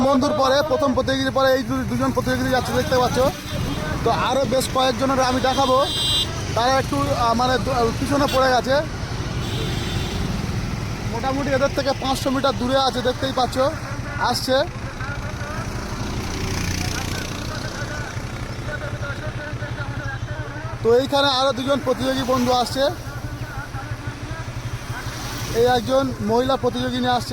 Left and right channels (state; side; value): identical; both; correlation 1.00